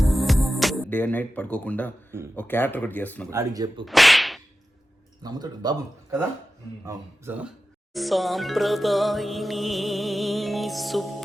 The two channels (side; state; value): both; normal; correlation 0.93